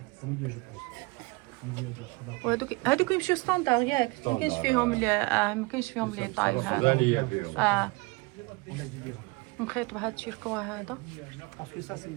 Au milieu, je pense. Au milieu de Rotterdam. وهذوك يمشيو ستاندار ياك، ما كاينش فيهم ما كاينش فيهم لي طاي هذا. On a du dirham. مخيط بهذا الشيركوا هذا. Parce que ça,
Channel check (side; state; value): left; quieter; 25.7 dB